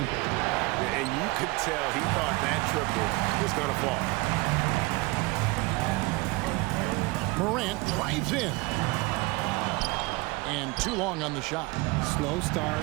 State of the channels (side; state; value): left; quieter; 23.8 dB